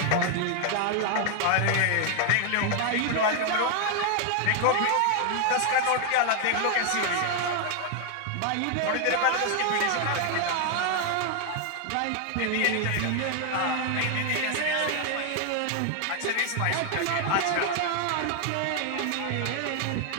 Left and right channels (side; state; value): both; different; correlation 0.00